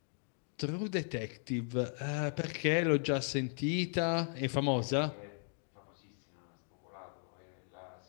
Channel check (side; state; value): right; silent; 53 dB below the other